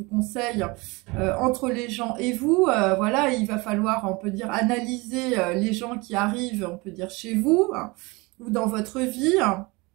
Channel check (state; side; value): quieter; left; 25.3 dB